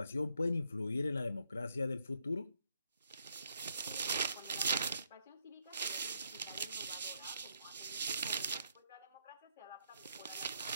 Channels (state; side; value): inverted; both; correlation -0.74